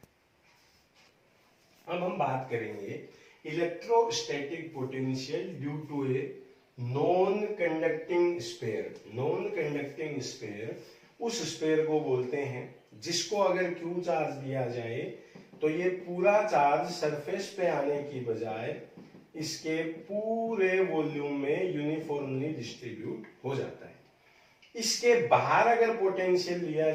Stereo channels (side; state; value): both; identical; correlation 1.00